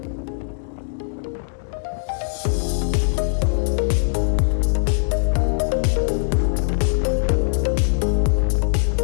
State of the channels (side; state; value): right; silent; digital silence